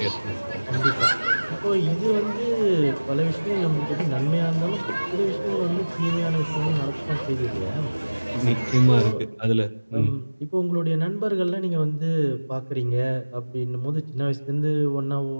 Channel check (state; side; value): inverted; both; correlation -1.00